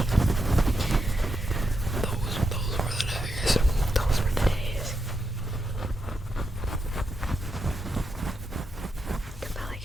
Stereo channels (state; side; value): normal; both; correlation 0.84